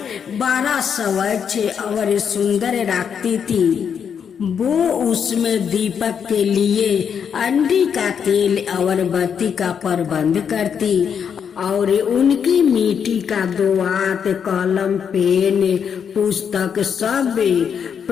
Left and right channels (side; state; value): right; quieter; 7.4 dB